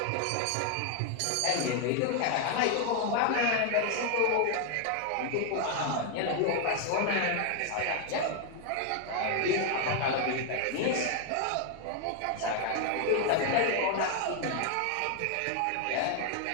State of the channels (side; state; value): both; different; correlation 0.00